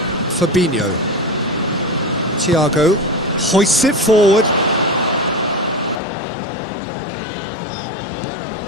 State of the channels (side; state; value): right; drops out; at 6.0 s